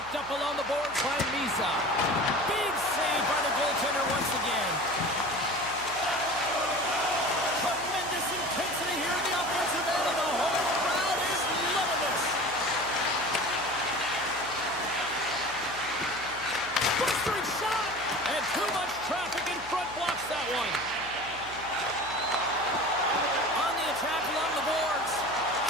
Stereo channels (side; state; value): right; noise; hum, 19 dB below the sound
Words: up along the boards by Misa. Big save by the goaltender once again. Tremendous intensity here in the offensive end, and the whole crowd is loving this. Blistering shot, and too much traffic in front blocks that one. Attack along the boards.